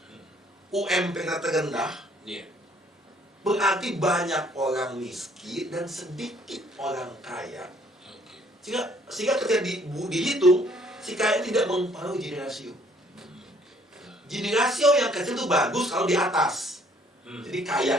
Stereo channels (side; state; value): both; normal; correlation 0.62